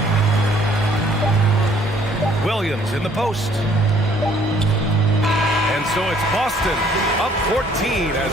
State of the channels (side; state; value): both; normal; correlation 0.61